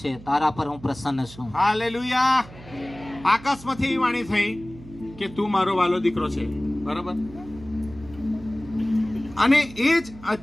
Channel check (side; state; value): right; noise; hum, 18 dB below the sound